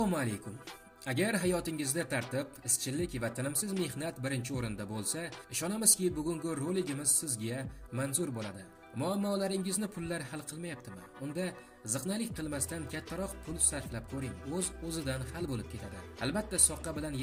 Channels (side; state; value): both; identical; correlation 1.00